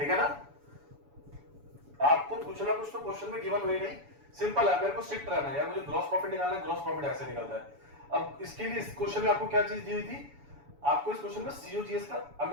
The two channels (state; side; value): late; left; 7.0 ms